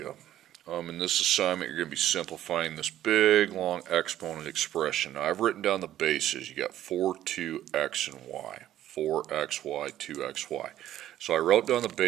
In this assignment, you're going to be simplifying this big, long exponent expression. Now, I've written down the bases. You got 4, 2, x, and y. 4xy, 2xy. So I wrote down the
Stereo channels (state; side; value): quieter; left; 12.5 dB